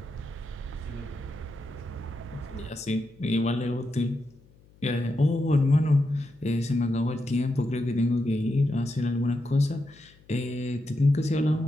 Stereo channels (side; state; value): left; noise; hum, 28 dB below the sound